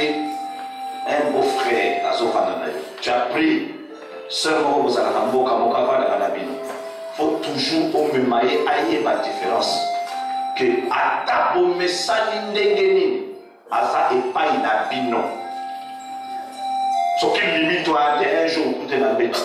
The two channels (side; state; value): both; identical; correlation 1.00